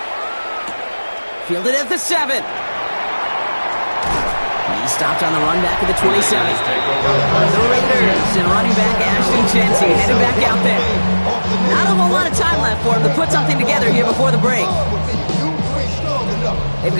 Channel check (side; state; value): both; inverted; correlation -1.00